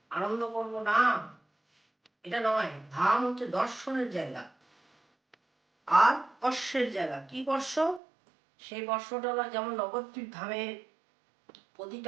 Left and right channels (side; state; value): left; drops out; at 8.0 s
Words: আনন্দ করবো না, এটা নয়। ধাম হচ্ছে দর্শনের জায়গা আর স্পর্শের জায়গা। কি স্পর্শ? সেই স্পর্শটা হলো যেমন নবদ্বীপ ধামে